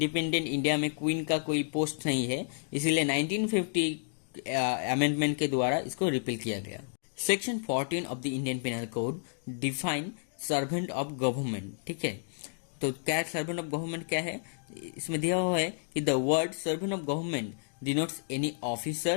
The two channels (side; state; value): right; silent; digital silence